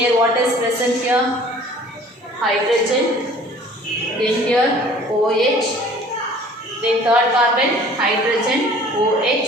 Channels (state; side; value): normal; both; correlation 0.50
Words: what is present here? Hydrogen. Then here OH. Then third carbon hydrogen OH